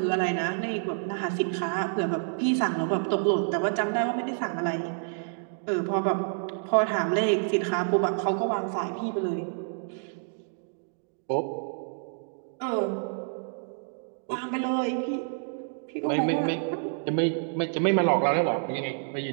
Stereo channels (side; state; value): left; silent; digital silence